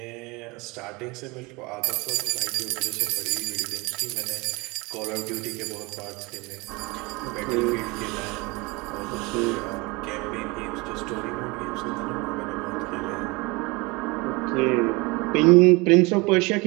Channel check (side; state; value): left; quieter; 25.7 dB